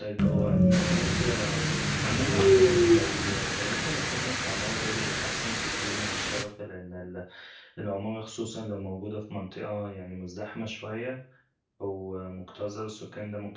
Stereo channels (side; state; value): both; identical; correlation 1.00